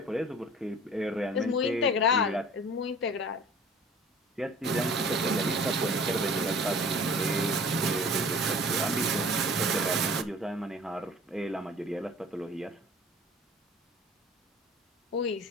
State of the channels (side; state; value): both; normal; correlation 0.46